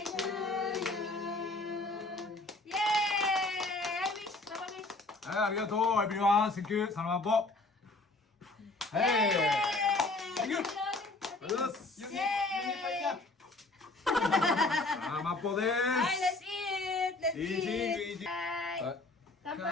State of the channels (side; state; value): right; quieter; 3.1 dB